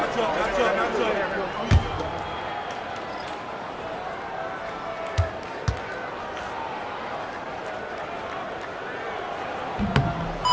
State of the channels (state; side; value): identical; both; correlation 1.00